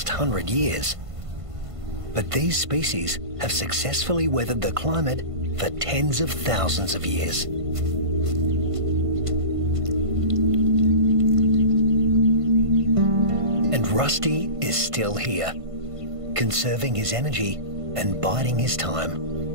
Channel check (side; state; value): left; late; 1.5 ms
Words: 100 years. But these species have successfully weathered the climate for tens of thousands of years. Rusty is still here, conserving his energy and biding his time.